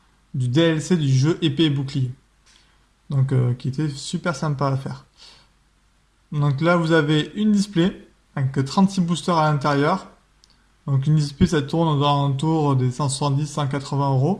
du DLC du jeu épée et bouclier. Donc qui était super sympa à faire. Donc là vous avez une display avec 36 boosters à l'intérieur. Donc une display ça tourne aux alentours des 170-180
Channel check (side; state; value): both; identical; correlation 1.00